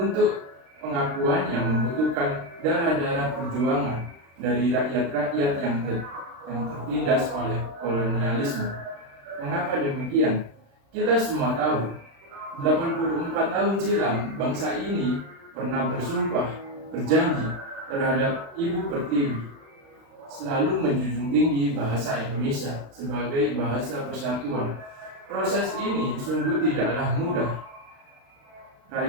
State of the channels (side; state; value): left; late; 36 ms